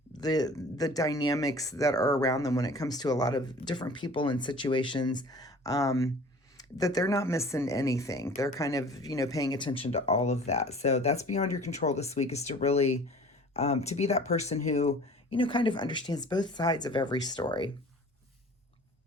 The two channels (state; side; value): normal; both; correlation 0.46